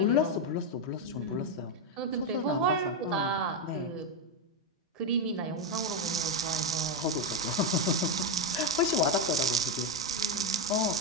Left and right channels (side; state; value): both; normal; correlation 0.07